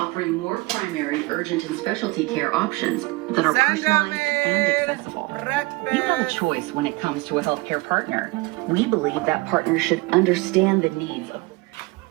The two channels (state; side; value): quieter; left; 23.4 dB